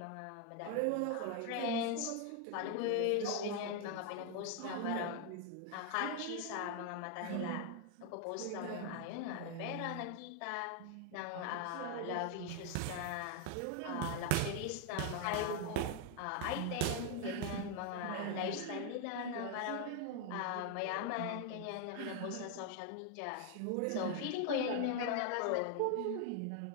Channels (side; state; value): both; different; correlation 0.01